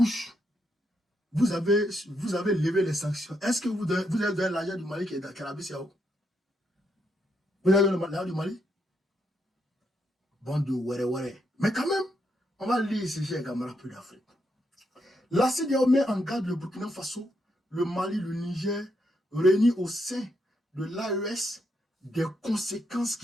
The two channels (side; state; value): both; normal; correlation 0.79